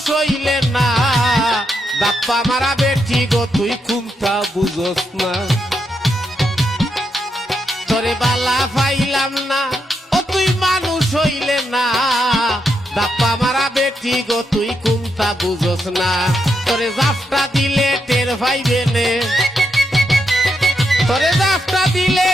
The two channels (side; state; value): both; normal; correlation 0.82